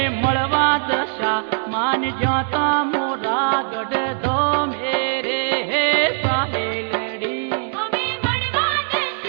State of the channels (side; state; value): left; silent; 57 dB below the other